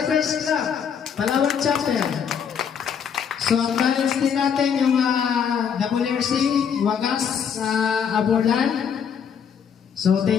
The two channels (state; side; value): quieter; right; 7.4 dB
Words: Club, Palawan chapter. So, ang talents din natin yung WRC, Wagas Aborlan. So,